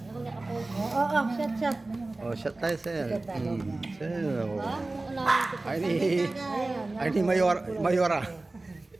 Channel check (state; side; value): quieter; left; 3.1 dB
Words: nakapost. Oo, chat. Oh, shot tayo, sir. Sir, oh. Ha? Alamin ko. Ay ni Mayora.